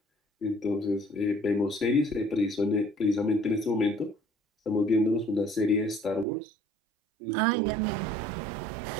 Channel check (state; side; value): drops out; left; at 6.2 s